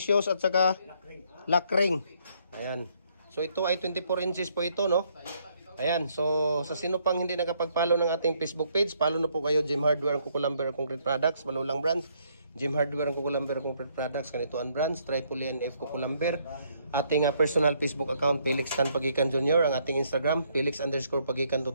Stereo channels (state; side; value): inverted; both; correlation -0.70